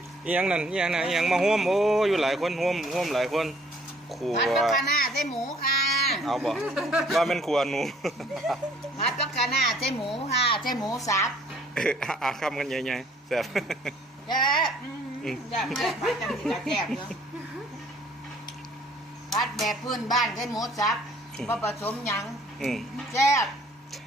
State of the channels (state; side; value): normal; both; correlation 0.59